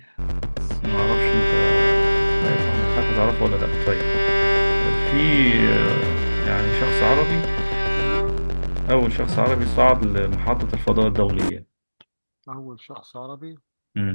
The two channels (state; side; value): inverted; both; correlation -1.00